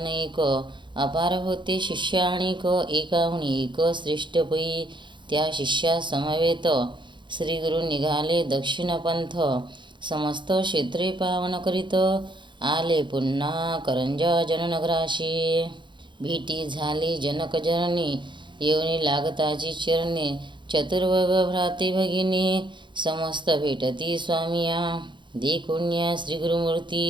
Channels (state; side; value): late; left; 0.23 ms